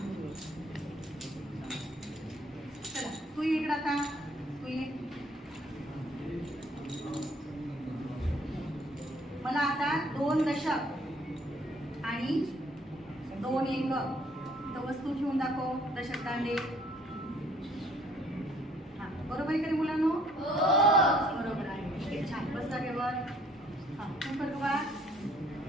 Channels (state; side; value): normal; both; correlation 0.61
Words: चला तू ये इकडं आता. तू ये. मला आता 2 दशक आणि 2 एकक तर वस्तू ठेवून दाखव. दशक दांडे. हा, बरोबर आहे का रे मुलांनो? बरोबर आहे. ठीक आहे, छान. बस जागेवर. हा, तू कर बघा.